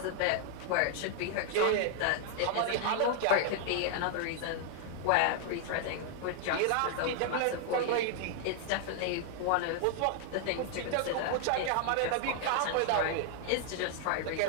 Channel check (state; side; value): different; both; correlation 0.00